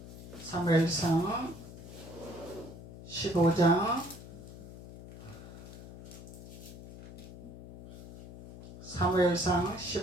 사무엘상 15장 사무엘상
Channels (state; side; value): noise; left; hum, 15 dB below the sound